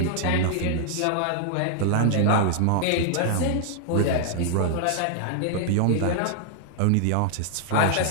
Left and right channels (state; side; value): different; both; correlation 0.00